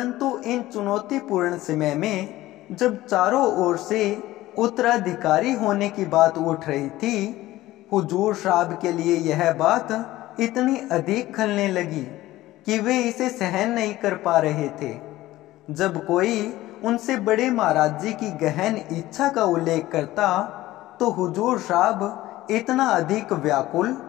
इन चुनौतीपूर्ण समय में जब चारों ओर से उत्तराधिकारी होने की बात उठ रही थी, हुजूर साहब के लिए यह बात इतनी अधिक खलने लगी कि वे इसे सहन नहीं कर पा रहे थे। जब कोई उनसे बड़े महाराज जी की गहन इच्छा का उल्लेख करता तो हुजूर साहब इतना अधिक व्याकुल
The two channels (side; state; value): right; quieter; 16.5 dB